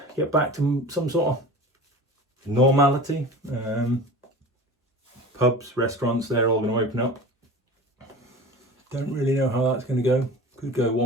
to some sort of normality. Pubs, restaurants, they're all going to open up. Don't really know how that's going to go. Could go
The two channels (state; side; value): normal; both; correlation 0.36